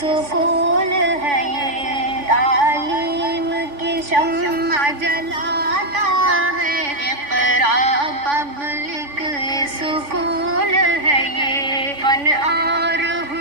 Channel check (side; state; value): left; late; 3.5 ms